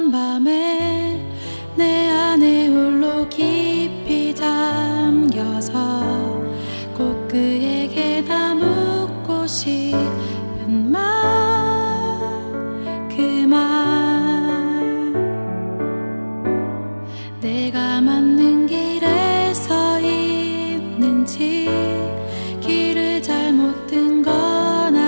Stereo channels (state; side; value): inverted; both; correlation -1.00